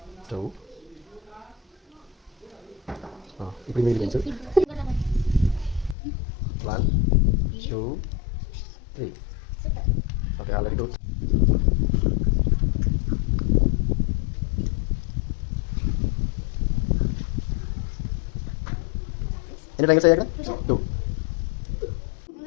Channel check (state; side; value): drops out; right; at 6.0 s